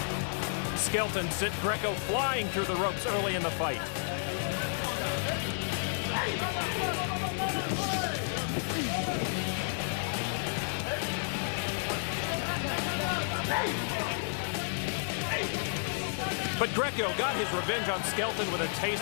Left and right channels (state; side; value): silent; right; digital silence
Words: Skelton sent Greco flying through the ropes early in the fight. But Greco got his revenge on Skelton with a